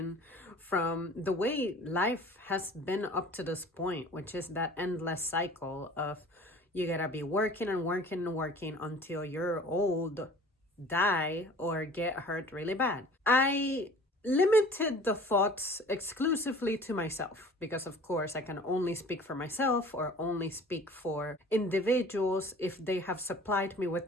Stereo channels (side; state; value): both; normal; correlation 0.46